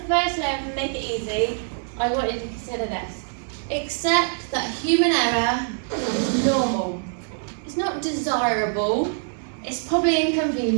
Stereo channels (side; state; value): left; silent; 62 dB below the other